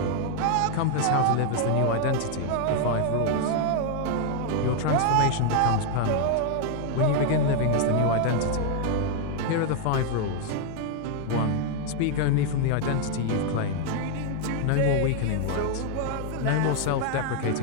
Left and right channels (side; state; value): both; different; correlation 0.00